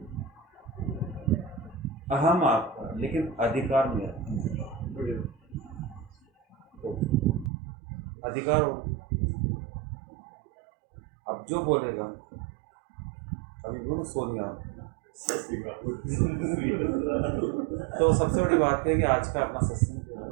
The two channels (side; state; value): left; drops out; at 7.5 s